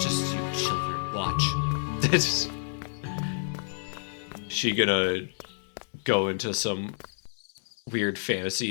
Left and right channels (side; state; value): right; silent; 59 dB below the other